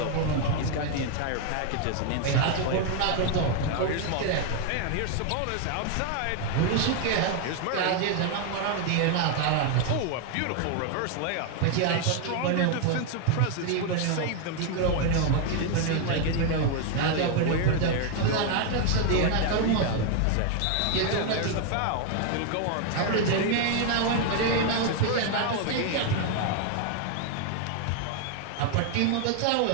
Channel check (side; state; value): both; different; correlation 0.01